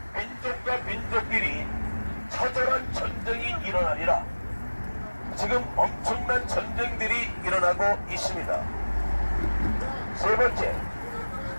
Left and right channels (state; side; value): inverted; both; correlation -1.00